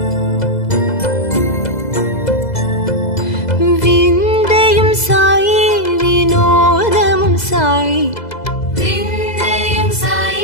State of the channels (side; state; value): right; late; 2.0 ms